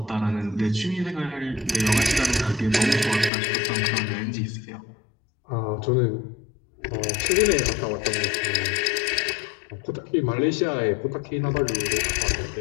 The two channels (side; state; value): right; drops out; at 3.3 s